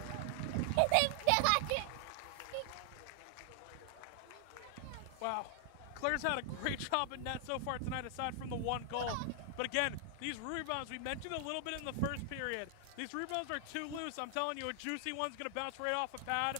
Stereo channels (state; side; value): different; both; correlation 0.00